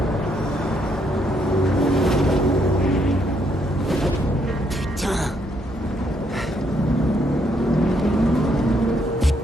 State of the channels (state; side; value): normal; both; correlation 0.73